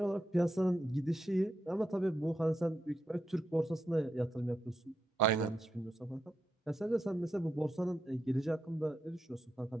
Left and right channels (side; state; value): both; normal; correlation 0.85